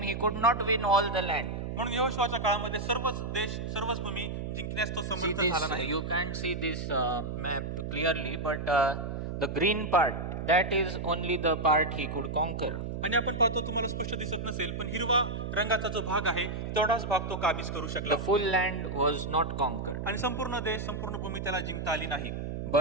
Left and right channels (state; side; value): noise; right; hum, 4 dB below the sound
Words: he could not win all the land. म्हणून यहोशुआच्या काळामध्ये सर्वच देश, सर्वच भूमी जिंकण्यास तो See समर्थ this, झाला नाही. you can't see this map clearly, but the green part, that is only the part he could conquer. आणि आपण पाहतो, तुम्हाला स्पष्ट दिसत नसेल, पण हिरवा रंगाचा जो भाग आहे तेवढाच भाग तो काबीज करू शकला. The full land was not conquered. आणि संपूर्ण देश, संपूर्ण भूमी त्याला जिंकता आली नाही.